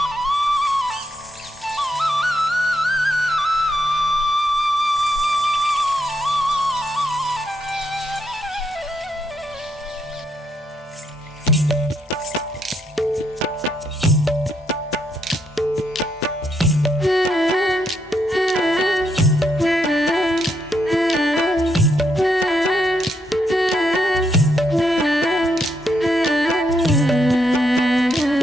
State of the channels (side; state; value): both; normal; correlation 0.77